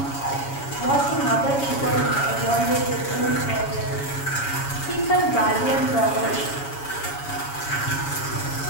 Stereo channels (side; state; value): right; late; 7.2 ms